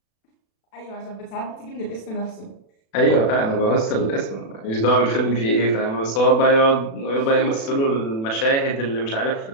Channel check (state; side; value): late; right; 36 ms